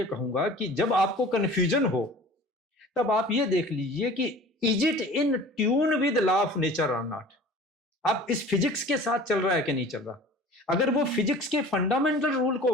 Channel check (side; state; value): both; normal; correlation 0.43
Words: कहूंगा कि जब आपको कंफ्यूजन हो तब आप ये देख लीजिए कि is it in tune with law of nature और नॉट। आप इस फिजिक्स के साथ चल रहा है कि नहीं चल रहा। अगर वो फिजिक्स के फंडामेंटल रूल को